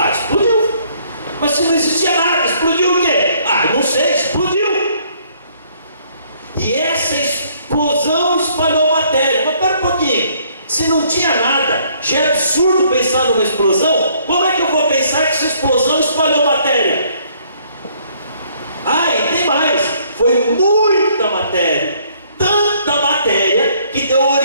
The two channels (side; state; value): both; inverted; correlation -0.64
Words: Explodiu. Mas se não existia nada, explodiu o quê? Não sei, explodiu. E essa explosão espalhou matéria. Mas pera um pouquinho, se não tinha nada, já é absurdo pensar numa explosão. Como é que eu vou pensar que essa explosão espalhou matéria? E tem mais, foi muita matéria. Tanta matéria que deu